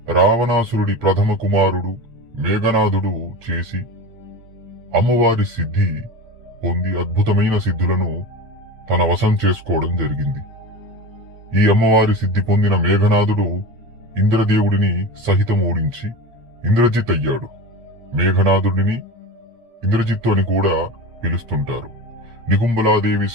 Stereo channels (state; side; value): late; left; 8.6 ms